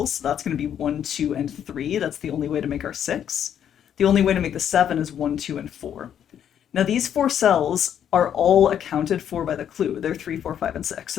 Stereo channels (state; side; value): quieter; right; 9.4 dB